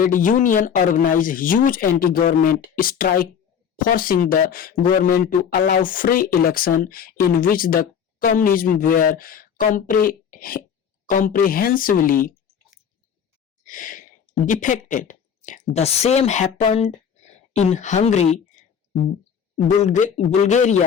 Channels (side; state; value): right; quieter; 7.7 dB